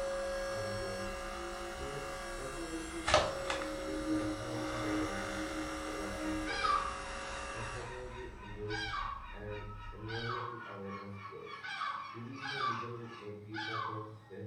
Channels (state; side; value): identical; both; correlation 1.00